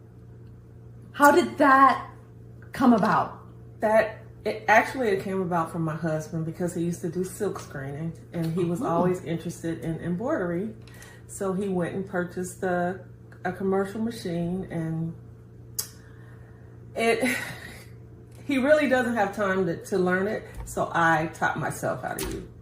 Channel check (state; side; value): identical; both; correlation 1.00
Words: How did that come about? It came about from my husband because he used to do silk screening and he was always interested in embroidery. So he went and purchased a commercial machine, and he really doesn't have time to learn it. So I taught myself how to use